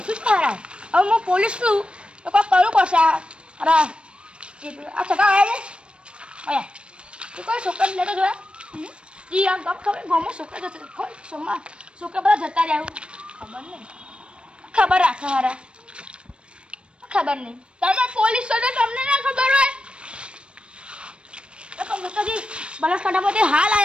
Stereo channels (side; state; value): left; late; 0.058 ms